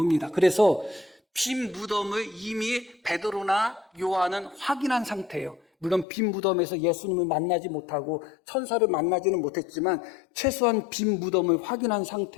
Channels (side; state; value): right; drops out; at 6.1 s